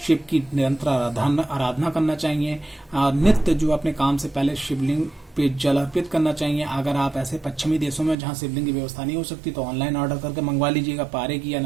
की निरंतर आराधना करना चाहिए और नित्य जो अपने काम से पहले शिवलिंग पे जल अर्पित करना चाहिए। अगर आप ऐसे पश्चिमी देशों में जहाँ शिवलिंग की व्यवस्था नहीं हो सकती तो ऑनलाइन ऑर्डर करके मंगवा लीजिएगा, पारे की या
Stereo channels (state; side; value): drops out; left; at 8.2 s